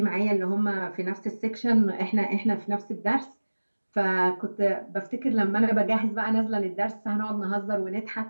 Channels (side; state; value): both; inverted; correlation -1.00